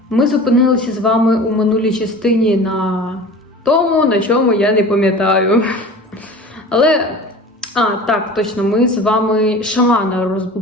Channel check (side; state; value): both; normal; correlation 0.38